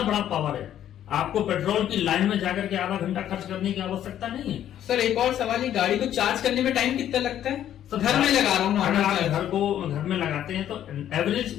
बड़ा पावर है। आपको पेट्रोल की लाइन में जाकर के आधा घंटा खर्च करने की आवश्यकता नहीं है। सर एक और सवाल, ये गाड़ी को चार्ज करने में टाइम कितना लगता है? घर में लगा रहा हूँ अगर आप नॉर्मल घर में लगाते हैं तो एवरेज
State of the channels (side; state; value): right; quieter; 11.0 dB